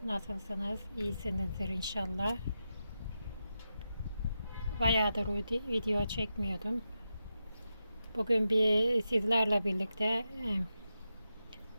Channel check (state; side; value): inverted; both; correlation -0.88